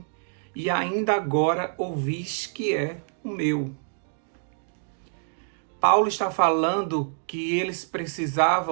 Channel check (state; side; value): silent; left; digital silence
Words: e ainda agora ouvis que é o meu. Paulo está falando que eles